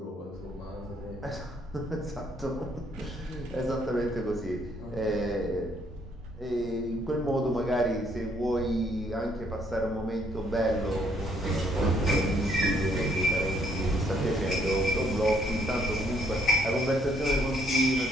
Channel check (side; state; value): both; normal; correlation 0.68